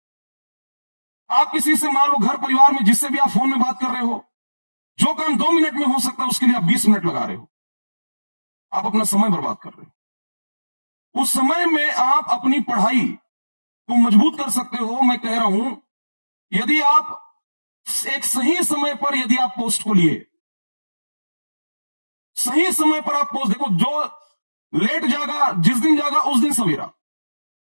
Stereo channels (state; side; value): inverted; both; correlation -1.00